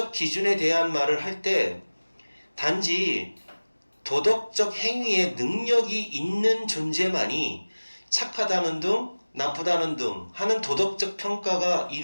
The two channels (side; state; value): both; inverted; correlation -1.00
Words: 기준에 대한 말을 할 때 단지 도덕적 행위에 능력이 있는 존재만이 착하다는 등 나쁘다는 등 하는 도덕적 평가가